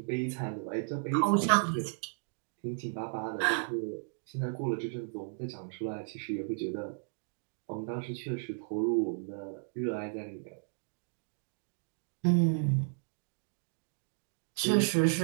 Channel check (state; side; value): silent; left; digital silence